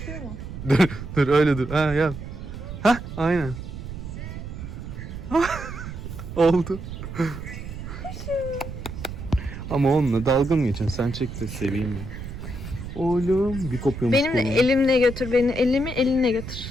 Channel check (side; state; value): right; noise; rumble, 9 dB below the sound